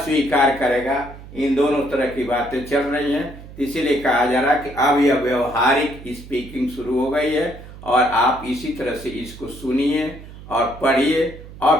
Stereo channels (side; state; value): right; noise; hum, 16 dB below the sound